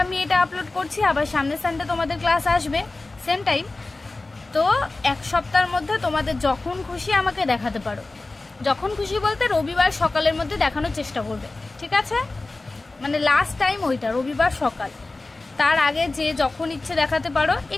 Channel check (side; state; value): right; quieter; 3.2 dB